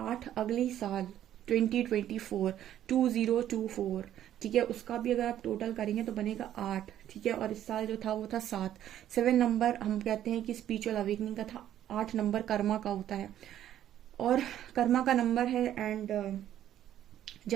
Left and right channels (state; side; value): quieter; left; 11.5 dB